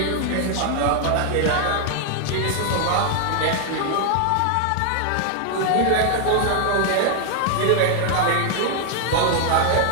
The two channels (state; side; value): different; both; correlation 0.00